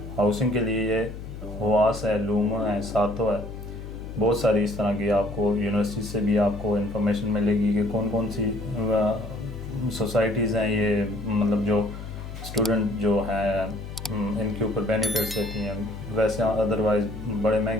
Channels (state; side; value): noise; left; hum, 10 dB below the sound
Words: हाउसिंग के लिए ये हुआस है, लूमा है, सातो है, बहुत सारी इस तरह की आपको यूनिवर्सिटी से भी आपको इन्फॉर्मेशन मिलेगी कि कौन कौन सी सोसाइटीज़ हैं ये, मतलब जो स्टूडेंट जो हैं इनके ऊपर बेनिफिट्स देती हैं। वैसे अदरवाइज़ बड़े